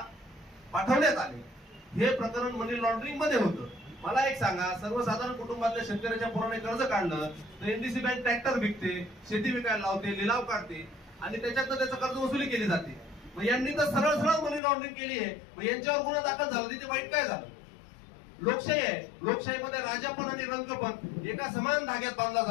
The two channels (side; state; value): right; drops out; at 14.6 s